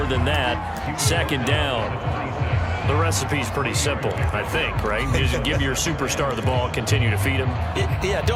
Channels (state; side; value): identical; both; correlation 1.00